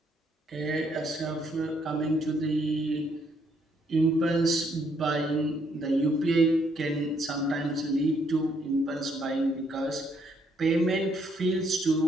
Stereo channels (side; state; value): both; normal; correlation 0.71